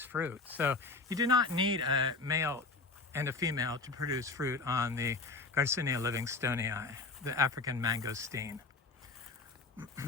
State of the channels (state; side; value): quieter; right; 4.0 dB